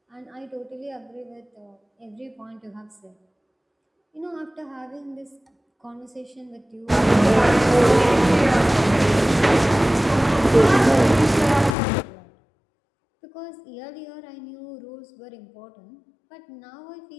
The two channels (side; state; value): right; drops out; at 11.8 s